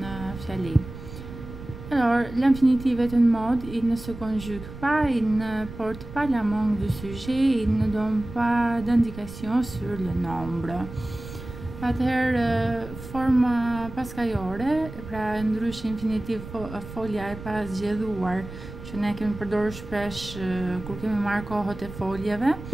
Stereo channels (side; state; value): right; noise; rumble, 13 dB below the sound